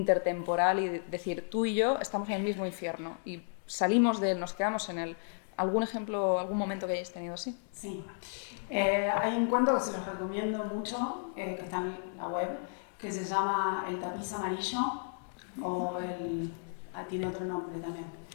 y decir, tú y yo estamos en el mismo infierno y salimos de él, nos quedamos en él. ¿Algún ejemplo, algún momento que hayáis tenido así? Sí. Hay un cuento que se los recomiendo mucho, que está en la web, que se llama El tapiz amarillo, o tiene otro nombre también.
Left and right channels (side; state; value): right; silent; digital silence